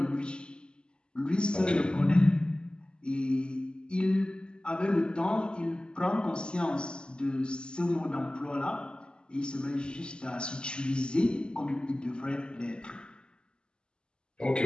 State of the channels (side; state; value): right; late; 0.050 ms